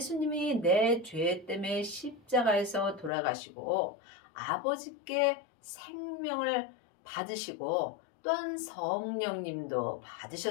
내 죄 때문에 십자가에서 돌아가시고 아버지께 생명을 받으시고 또한 성령님도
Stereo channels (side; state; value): right; drops out; at 3.1 s